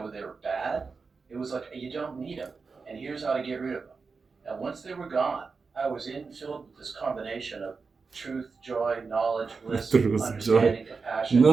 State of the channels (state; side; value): quieter; left; 4.7 dB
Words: bad. It was like, you don't need them, and here's how to get rid of them. And once they were gone, I was filled with this combination of truth, joy, knowledge, bliss, Truth, understanding, joy. compassion.